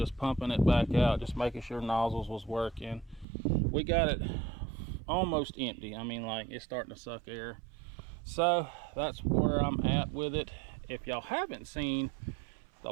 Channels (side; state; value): left; drops out; at 3.2 s